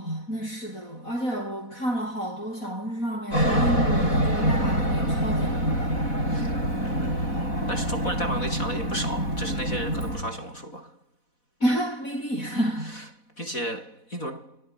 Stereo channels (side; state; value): right; late; 4.1 ms